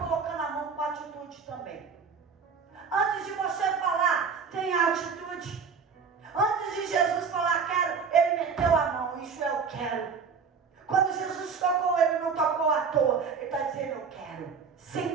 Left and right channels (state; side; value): quieter; left; 5.8 dB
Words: a mão com atitude também. Antes de você falar, tenha atitude. Antes de Jesus falar quero, ele meteu a mão, isso eu quero. Quando Jesus tocou, ele não tocou à toa, ele está dizendo eu quero,